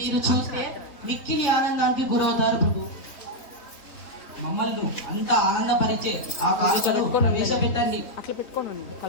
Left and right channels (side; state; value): right; late; 3.5 ms